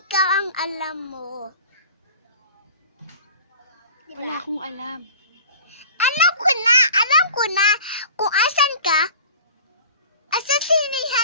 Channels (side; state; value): both; inverted; correlation -0.42